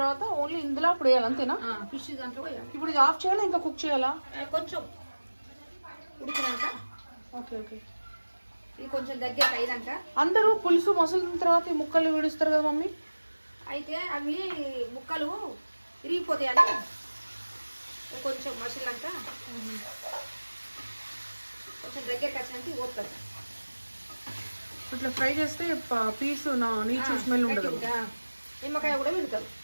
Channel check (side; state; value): both; inverted; correlation -1.00